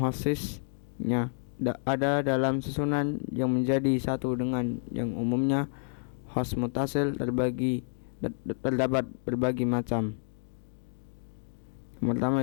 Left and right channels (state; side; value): silent; right; 57 dB below the other